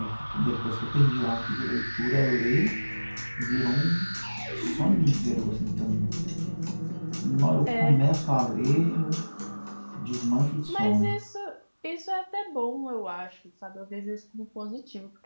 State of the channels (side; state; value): both; inverted; correlation -1.00